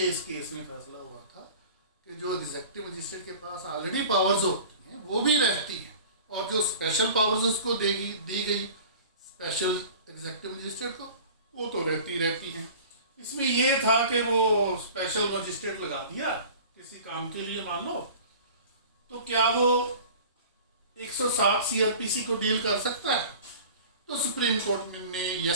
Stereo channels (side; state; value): both; inverted; correlation -0.41